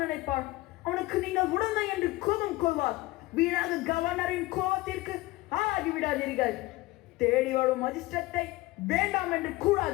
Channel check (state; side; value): quieter; right; 19.7 dB